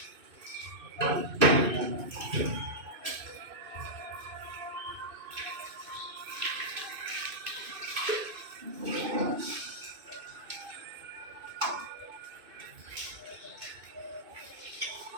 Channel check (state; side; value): late; left; 2.6 ms